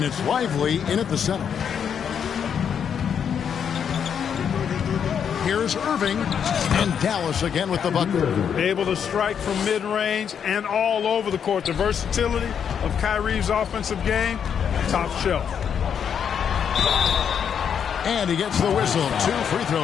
it's Lively in at the center. Here's Irving, and Dallas again with the bucket. Able to strike from mid-range and all over the court. The versatility of Kyrie's offensive game, top shelf. And he gets the whistle. 2 free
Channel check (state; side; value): quieter; right; 7.8 dB